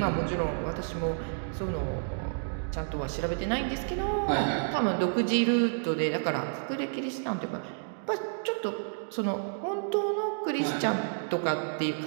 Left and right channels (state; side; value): silent; left; digital silence